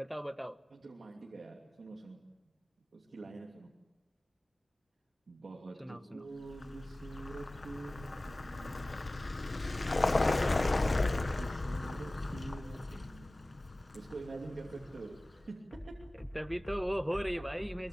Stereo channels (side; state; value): both; normal; correlation 0.98